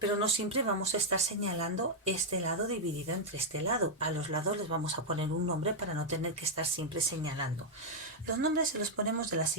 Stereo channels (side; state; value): both; normal; correlation -0.02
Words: no siempre vamos a estar señalando este lado dividido entre este lado. A los lados les vamos a poner un nombre para no tener que estar siempre señalando. Los nombres se los ponemos de la